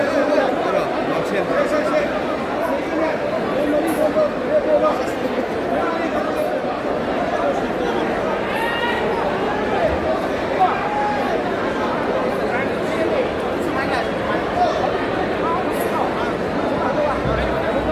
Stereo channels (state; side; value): identical; both; correlation 1.00